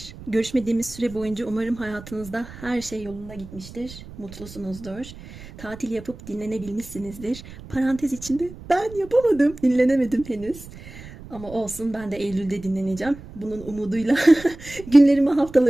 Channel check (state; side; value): noise; right; rumble, 16 dB below the sound